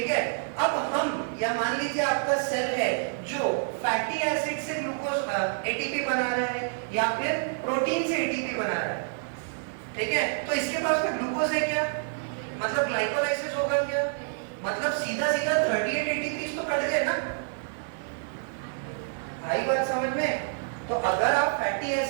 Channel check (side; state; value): left; silent; digital silence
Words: है। अब हम या मान लीजिए आपका सेल है जो फैटी एसिड से ग्लूकोज एटीपी बना रहे हैं या फिर प्रोटीन से एटीपी बना रहा है, ठीक है। तो इसके पास में ग्लूकोज है क्या, मतलब ग्लाइकोलाइसिस होगा क्या, मतलब सीधा सीधा 38 एटीपी तो कट गए ना, आई बात समझ में। तो अगर आप फैटी